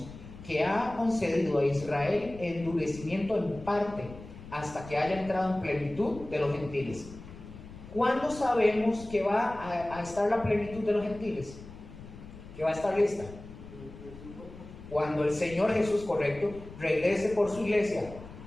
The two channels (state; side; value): noise; left; rumble, 15 dB below the sound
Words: que ha concedido a Israel endurecimiento en parte, hasta que haya entrado en plenitud de los gentiles. ¿Cuándo sabemos que va a estar la plenitud de los gentiles? Que va a estar lista. Cuando el Señor Jesús, correcto, regrese por su iglesia.